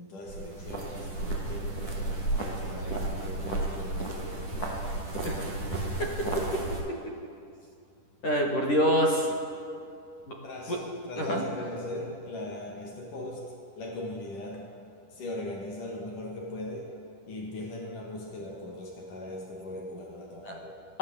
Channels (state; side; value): late; right; 10 ms